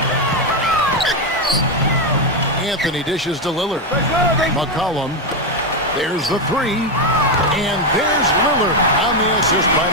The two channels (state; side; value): normal; both; correlation 0.07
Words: Anthony dishes to Lillard. McCollum. There's the 3. And there's Lillard on the assist by